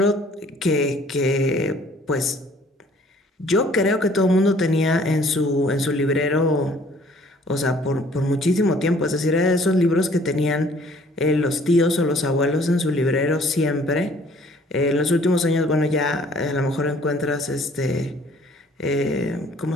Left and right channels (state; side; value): normal; both; correlation 0.57